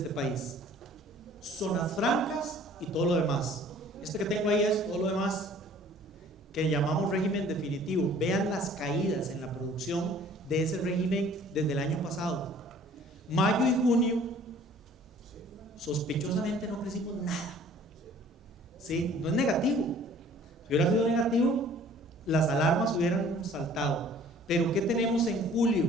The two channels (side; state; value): both; normal; correlation 0.52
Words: país: zonas francas y todo lo demás. Este que tengo ahí es todo lo demás, que llamamos régimen definitivo. Vean las caídas en la producción de ese régimen desde el año pasado. Mayo y junio, sospechosamente no crecimos nada. ¿Sí? No es negativo. Si hubiera sido negativo, las alarmas hubieran saltado. Pero ¿qué tenemos en julio